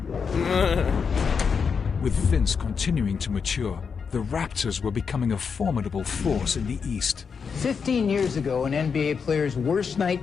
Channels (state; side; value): quieter; right; 6.0 dB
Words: With Vince continuing to mature, the Raptors were becoming a formidable force in the East. 15 years ago, an NBA player's worst